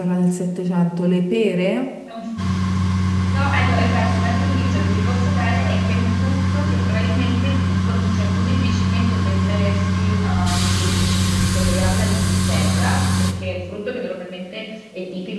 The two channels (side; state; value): both; identical; correlation 1.00